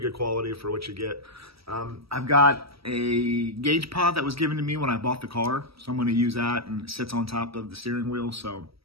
quality for what you get. I've got a gauge pod that was given to me when I bought the car, so I'm going to use that, and it sits on top of the steering wheel. So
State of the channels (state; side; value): late; left; 0.76 ms